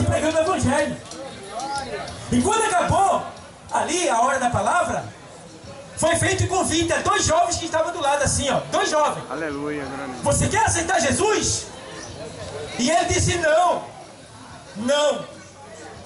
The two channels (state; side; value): identical; both; correlation 1.00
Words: pregando o Evangelho. E quando acabou, ali a hora da palavra, foi feito um convite a 2 jovens que estavam do lado assim, ó. 2 jovens. Aleluia, grande. Você quer aceitar Jesus? E ele disse não. Não.